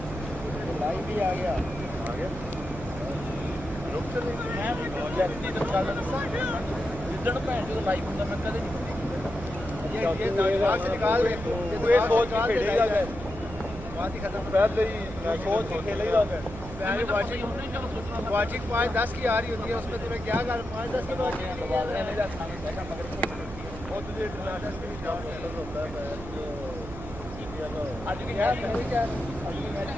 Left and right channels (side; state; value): right; noise; hum, 11 dB below the sound